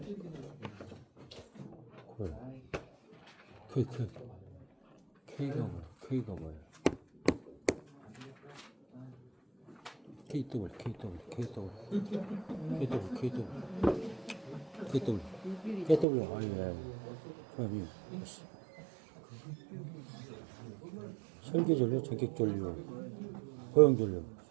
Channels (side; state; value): left; drops out; at 16.1 s